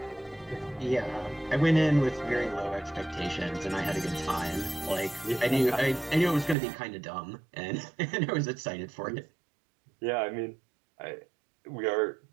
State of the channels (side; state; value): left; drops out; at 6.6 s